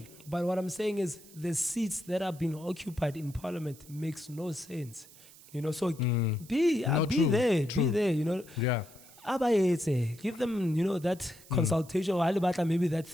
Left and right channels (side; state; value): right; noise; hiss, 22 dB below the sound